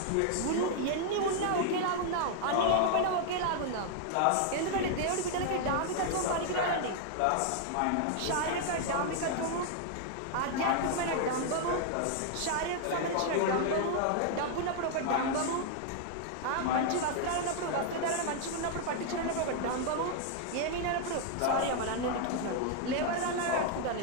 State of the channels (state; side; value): different; both; correlation 0.00